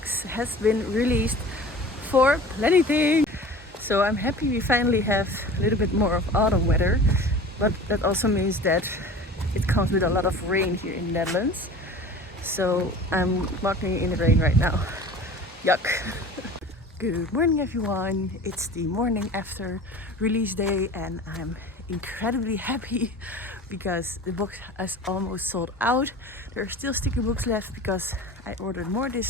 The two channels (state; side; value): normal; both; correlation 0.40